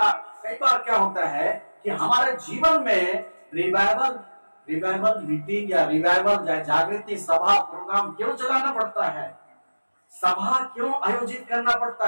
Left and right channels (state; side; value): inverted; both; correlation -1.00